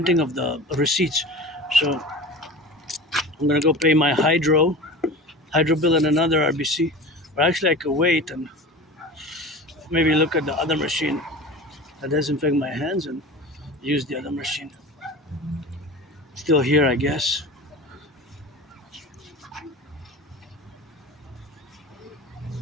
of the receipts. So I'm gonna go pay my hydro bill and another RBC. Or actually, I could wait and maybe look at the other machine that disinfect my hands and use the other machine. Still here, I guess.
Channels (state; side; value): normal; both; correlation 0.34